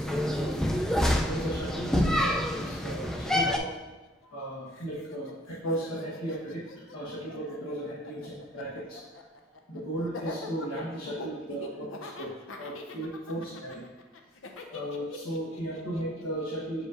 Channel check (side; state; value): both; normal; correlation 0.62